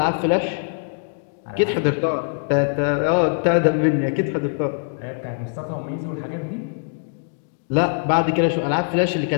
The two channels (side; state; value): right; silent; digital silence